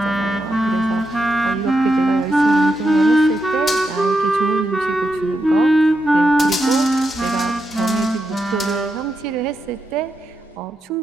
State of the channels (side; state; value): both; normal; correlation 0.85